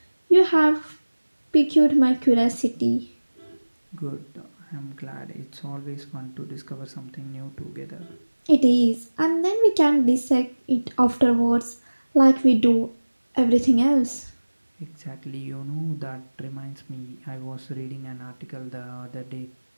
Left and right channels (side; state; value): both; inverted; correlation -1.00